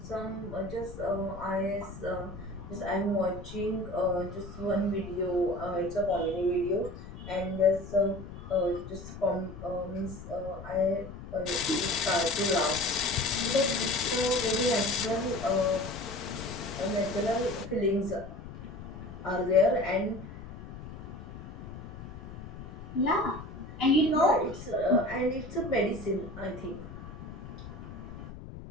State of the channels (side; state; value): left; noise; rumble, 12 dB below the sound